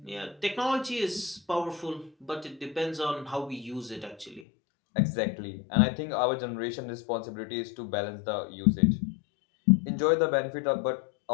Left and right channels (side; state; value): right; drops out; at 4.5 s